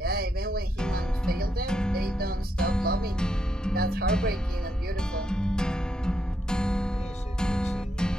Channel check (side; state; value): both; normal; correlation 0.79